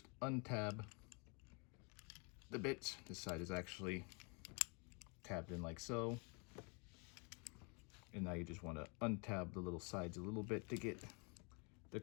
untab the bits. This side is actually tabbed in like so. And now you just want to untab the little sides a little bit to get the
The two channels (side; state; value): right; quieter; 33.4 dB